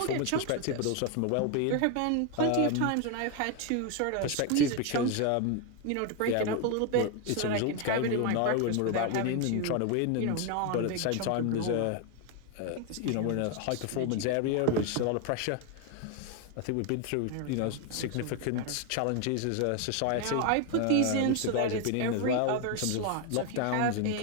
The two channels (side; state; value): both; different; correlation 0.01